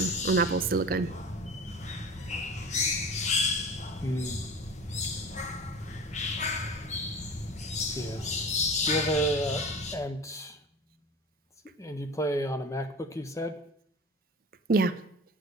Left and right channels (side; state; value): both; normal; correlation 0.35